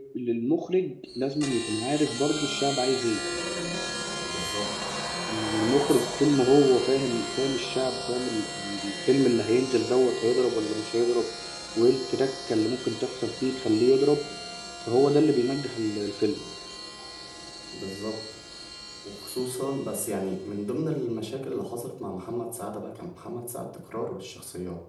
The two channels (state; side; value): identical; both; correlation 1.00